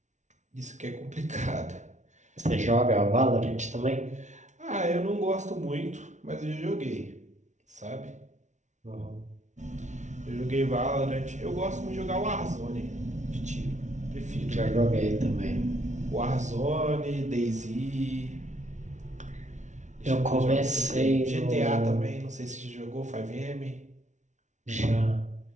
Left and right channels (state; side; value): late; left; 0.35 ms